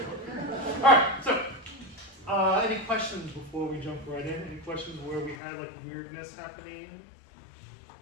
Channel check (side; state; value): right; drops out; at 5.4 s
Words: Alright, so any questions before we jump right in? Any questions where we had like weirdness happening?